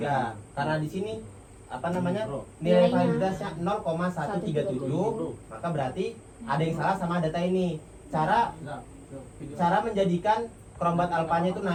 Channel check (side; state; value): both; identical; correlation 1.00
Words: Karena di sini apa namanya? Nilai Nilainya validitasnya 0,137, maka berarti ada yang salah sama data ini. Cara menjadikan kerombat alfanya itu